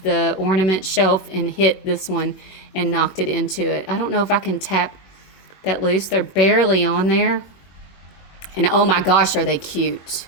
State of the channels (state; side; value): late; right; 21 ms